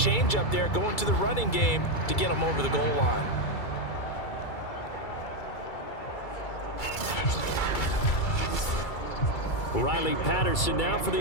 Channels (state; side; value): late; right; 2.3 ms